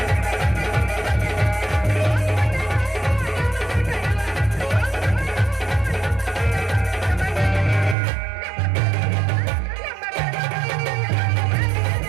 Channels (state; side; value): drops out; left; at 8.0 s